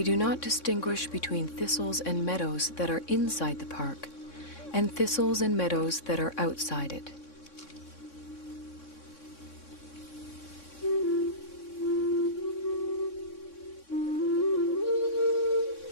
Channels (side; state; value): right; late; 3.6 ms